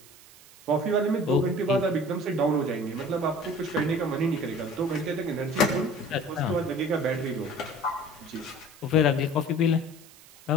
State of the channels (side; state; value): right; noise; hiss, 23 dB below the sound